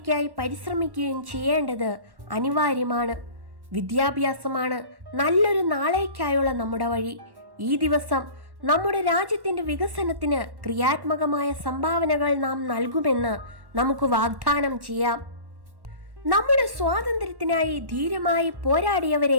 പരിശ്രമിക്കുകയും ചെയ്യേണ്ടത് അനിവാര്യമാണ്. വിദ്യാഭ്യാസമാണ് നല്ലൊരു നാളേക്കായുള്ള നമ്മുടെ വഴി. ഈ ദിവസം നമ്മുടെ രാജ്യത്തിൻ്റെ വികസനത്തിന് ക്രിയാത്മകമായ സംഭാവനകൾ നാം നൽകുമെന്ന് നമുക്ക് വാഗ്ദാനം ചെയ്യാം. നമ്മുടെ സ്വാതന്ത്ര്യത്തിനായി ധീരമായി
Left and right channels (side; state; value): left; late; 1.1 ms